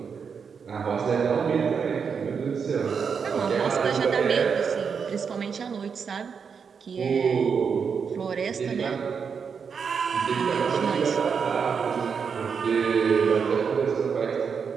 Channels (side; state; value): left; quieter; 6.2 dB